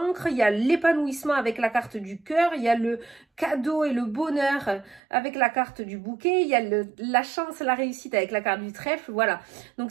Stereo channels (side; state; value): left; drops out; at 5.0 s